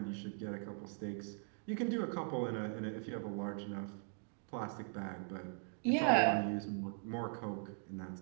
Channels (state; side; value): silent; left; 51 dB below the other